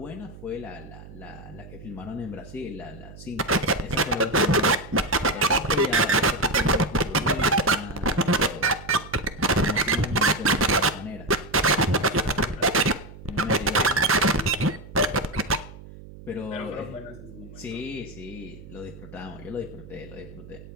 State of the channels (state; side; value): noise; right; hum, 17 dB below the sound